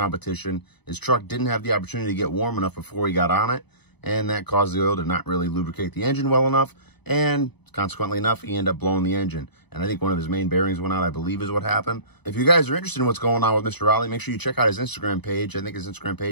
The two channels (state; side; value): late; right; 0.99 ms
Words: His truck didn't have the opportunity to get warm enough before he got on it, and that caused the oil to not really lubricate the engine well enough, and consequently enough, he ended up blowing the engine. And I think one of his main bearings went out, I believe is what happened. If you guys are interested in what's going on with Mr. Raleigh, make sure you check out his Instagram page. I think his Instagram